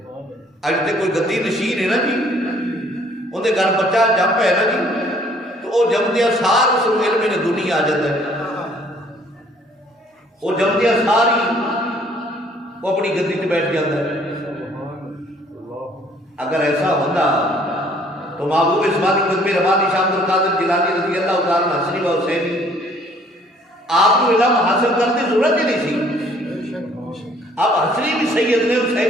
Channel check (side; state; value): both; normal; correlation 0.59